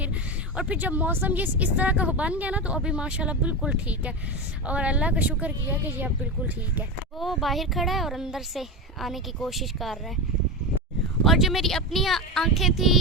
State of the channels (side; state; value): both; normal; correlation 0.19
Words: जब मौसम ये इस तरह का बन गया ना, तो अभी माशाल्लाह बिल्कुल ठीक है और अल्लाह का शुक्र किया कि ये अब बिल्कुल ठीक है। वो बाहर खड़ा है और अंदर से आने की कोशिश कर रहा है। और जो मेरी अपनी आँखें थी